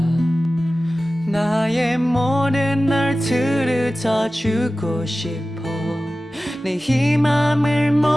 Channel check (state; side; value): normal; both; correlation 0.96